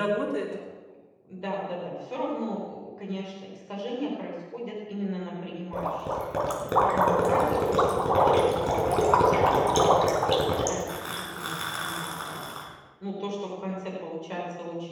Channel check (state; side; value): identical; both; correlation 1.00